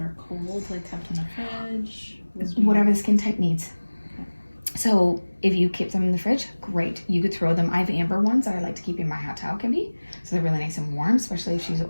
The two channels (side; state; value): both; inverted; correlation -1.00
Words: cold, like kept in the fridge? Whatever the skin type needs. Okay. So if you keep them in the fridge, great. You could throw them. I have amber ones that I like to keep in my hot towel cubby. So they're really nice and warm, especially if she's